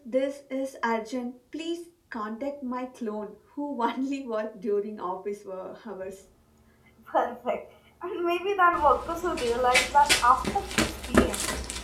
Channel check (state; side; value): identical; both; correlation 1.00